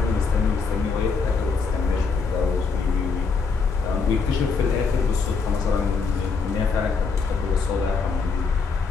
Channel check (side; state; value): right; quieter; 4.8 dB